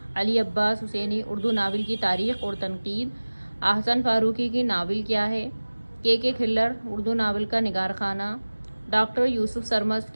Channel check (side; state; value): both; inverted; correlation -1.00